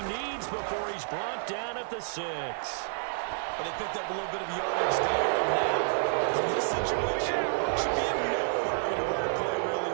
needs before the 6. Well, they picked up a little bit of yardage there. And now, in this situation, should be in no hurry to run a play really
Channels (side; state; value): left; silent; digital silence